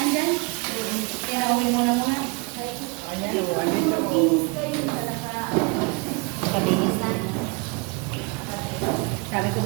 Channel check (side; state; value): left; quieter; 29.1 dB